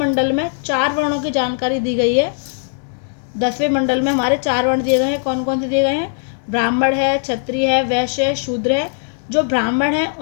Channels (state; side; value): silent; right; digital silence